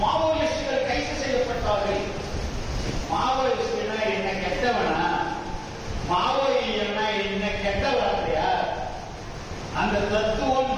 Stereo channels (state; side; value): identical; both; correlation 1.00